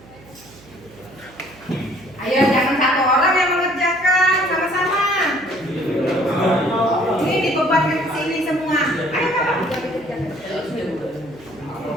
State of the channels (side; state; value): right; noise; hum, 24 dB below the sound